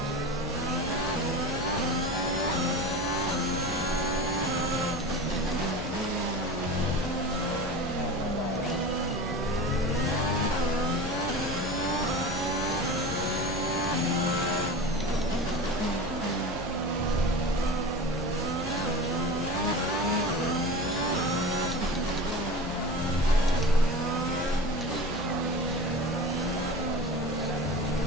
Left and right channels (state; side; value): noise; left; hum, 13 dB below the sound